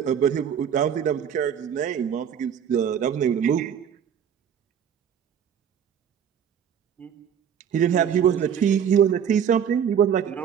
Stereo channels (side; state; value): left; quieter; 8.3 dB